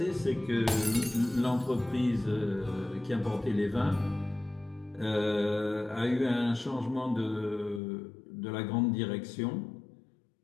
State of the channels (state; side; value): drops out; right; at 7.8 s